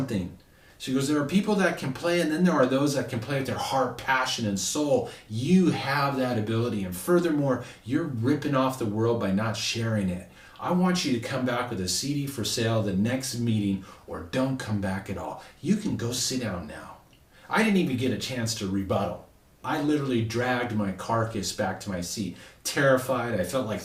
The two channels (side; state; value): both; identical; correlation 1.00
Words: She goes, there are people that can play, and then there are those that can play with their heart, passion, and soul. You have that ability. And furthermore, you're ripping off the world by not sharing it. I want you to come back with a CD for sale the next meeting, or don't come back at all. You can go sit down now. I didn't even get a chance to rebuttal. I literally dragged my carcass back to my seat, terrified. I felt like